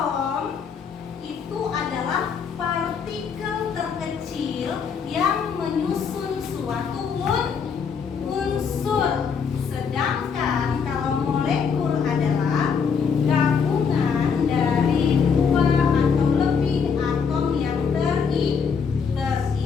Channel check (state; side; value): quieter; right; 6.2 dB